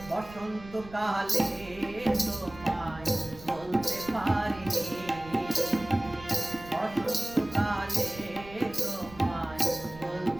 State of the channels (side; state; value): right; noise; rumble, 17 dB below the sound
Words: বসন্তকালে তোমায় বলতে পারিনি, বসন্তকালে তোমায়